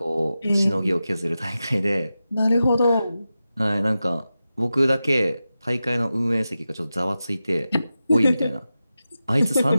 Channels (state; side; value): inverted; both; correlation -0.93